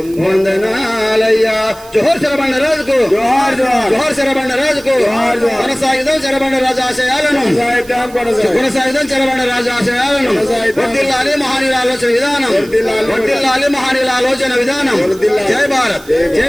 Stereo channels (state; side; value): noise; right; hiss, 22 dB below the sound